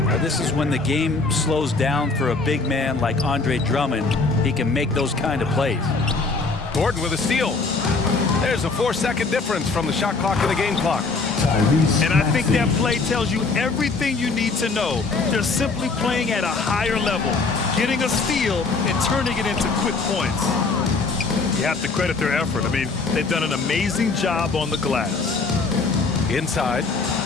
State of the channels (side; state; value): right; quieter; 4.0 dB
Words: This is when the game slows down for a big man like Andre Drummond. He can make those kind of plays. Gordon with a steal. There's a 4-second difference from the shot clock to the game clock. And I think that play tells you everything you need to know. They're simply playing at a higher level, getting a steal and turning it into quick points. You have to credit their effort. I mean, they've done an amazing job on the glass. Inside,